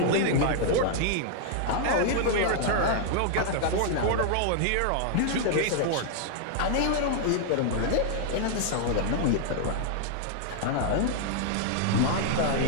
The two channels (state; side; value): different; both; correlation 0.00